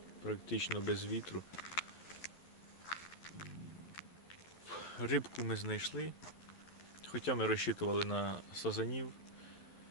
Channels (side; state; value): right; late; 12 ms